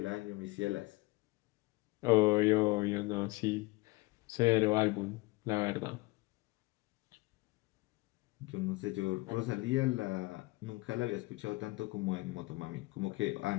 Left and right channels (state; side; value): quieter; right; 22.8 dB